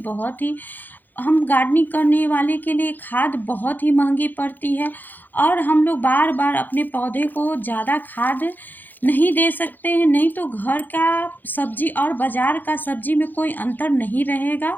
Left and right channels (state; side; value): late; right; 0.087 ms